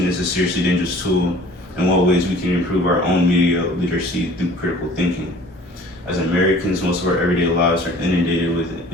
is a seriously dangerous tool, and what ways we can improve our own media literacy through critical thinking. As Americans, most of our everyday lives are inundated with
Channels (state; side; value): normal; both; correlation 0.49